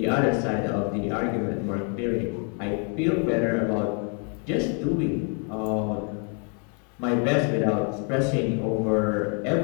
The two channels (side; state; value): right; quieter; 39.4 dB